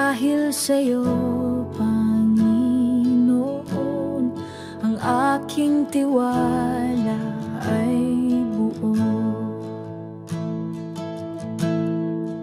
sa'yo, Panginoon. Ang aking tiwala ay buo.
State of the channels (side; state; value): both; identical; correlation 1.00